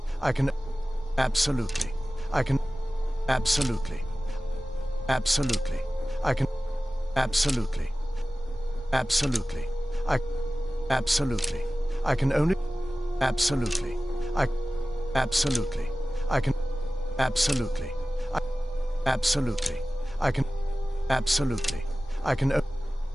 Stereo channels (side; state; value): both; normal; correlation 0.96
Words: I can. Absolutely. I can. Absolutely. Absolutely. I can. Absolutely. Absolutely. I. Absolutely. I can only. Absolutely. I. Absolutely. I can. Absolutely. I. Absolutely. I can. Absolutely. I can.